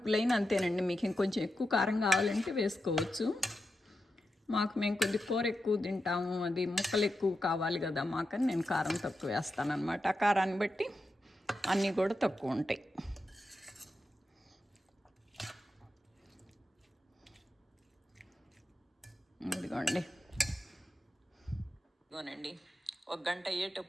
అంతేనండి, మీకు ఇంకొంచెం ఎక్కువ కారం కావాలంటే వేసుకోవచ్చు. మేము కొద్ది కూర ఎక్కువ తింటాము, అది ముక్కలు ఎక్కువ కావాలి కదా మాకని నేను కారం తక్కువ వేస్తానన్నమాట. ఆ కారాన్ని బట్టి అన్నీ కూడా తక్కువ ఉంటాయి. ఇదిగోనండి, 1 గంట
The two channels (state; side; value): normal; both; correlation 0.88